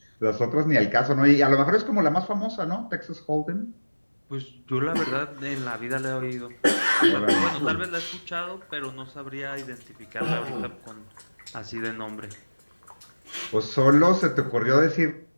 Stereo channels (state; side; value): inverted; both; correlation -1.00